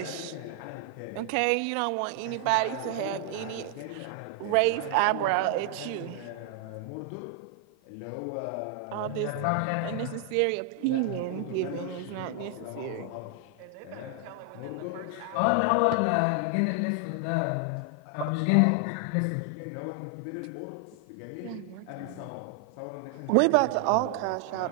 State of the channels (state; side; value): different; both; correlation 0.00